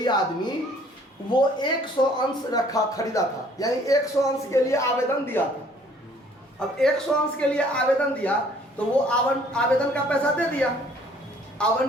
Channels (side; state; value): both; normal; correlation 0.58